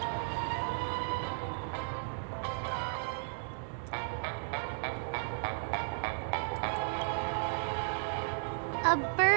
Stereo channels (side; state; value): left; silent; digital silence